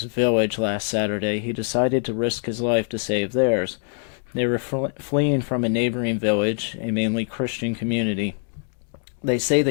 village last Saturday, he decided to risk his life to save theirs. They were fleeing from a neighboring village, a mainly Christian community. They say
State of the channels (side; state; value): right; silent; 60 dB below the other